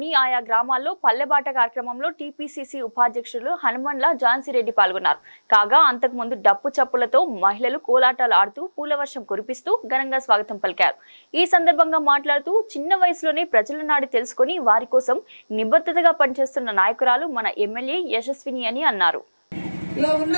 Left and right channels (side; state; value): both; inverted; correlation -1.00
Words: ఆయా గ్రామాల్లో పల్లెబాట కార్యక్రమంలో టీపీసీసీ ఉపాధ్యక్షులు హనుమన్ల ఝాన్సీరెడ్డి పాల్గొన్నారు. కాగా అంతకుముందు డప్పు చప్పులతో మహిళలు కోలాటాలు ఆడుతూ పూలవర్షం కురిపిస్తూ ఘనంగా స్వాగతం పలికారు. ఈ సందర్భంగా మాట్లాడుతూ చిన్న వయసులోనే ప్రజల నాడి తెలుసుకుని వారి కోసం నిబద్ధతగా పనిచేస్తున్న నాయకురాలు మన ఎమ్మెల్యే యశస్విని అని అన్నారు.